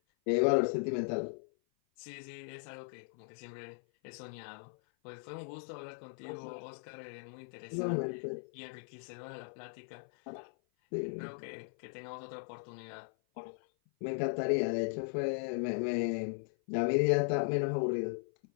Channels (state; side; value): silent; right; 53 dB below the other